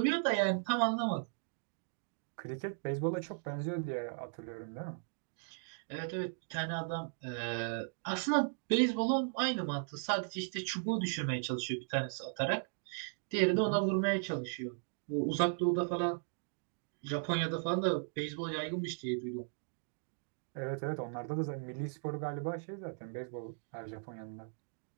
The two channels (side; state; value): left; silent; digital silence